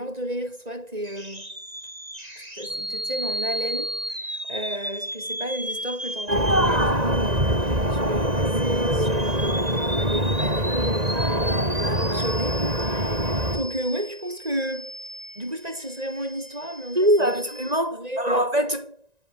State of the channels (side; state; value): left; late; 1.9 ms